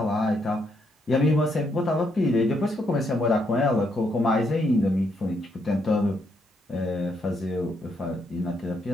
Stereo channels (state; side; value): normal; both; correlation 0.76